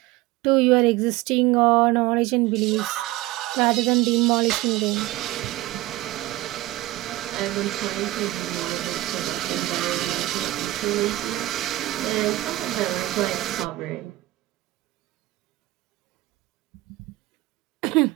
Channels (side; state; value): left; quieter; 17.7 dB